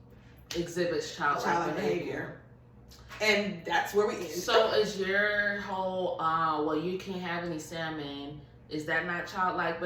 exhibits childlike behavior. And that's where we end. So is your whole, well, you can't have any salmon, is that not childlike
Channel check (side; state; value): both; identical; correlation 1.00